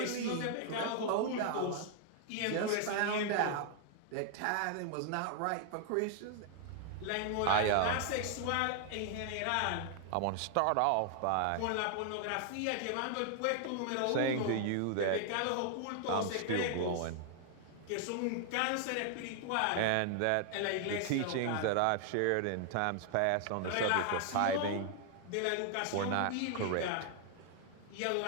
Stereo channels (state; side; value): different; both; correlation 0.00